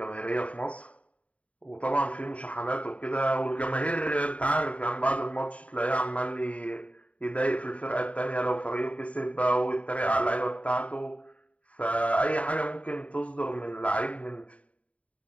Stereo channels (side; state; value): right; late; 0.065 ms